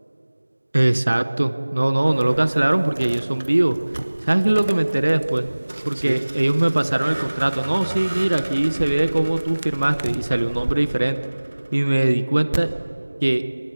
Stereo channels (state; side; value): inverted; both; correlation -1.00